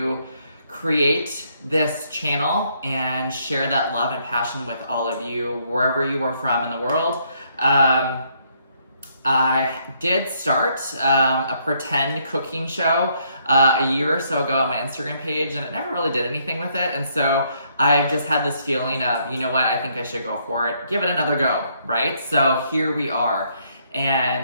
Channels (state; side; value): inverted; both; correlation -0.70